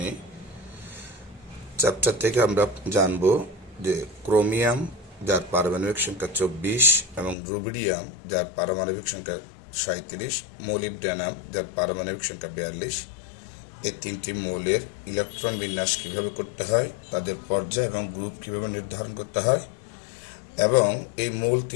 চ্যাপ্টার থেকে আমরা জানব যে ক্রোমিয়াম যার পারমাণবিক সংখ্যা 24 এবং রুবিডিয়াম যার পারমাণবিক সংখ্যা 37, মোলিবডেনাম যার পারমাণবিক সংখ্যা 42, এই তিনটি মৌলের ইলেকট্রন বিন্যাস কিভাবে করতে হয়, তাদের পর্যায় এবং গ্রুপ কিভাবে নির্ধারণ করতে হয়, এবং এই মৌল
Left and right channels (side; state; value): right; drops out; at 7.4 s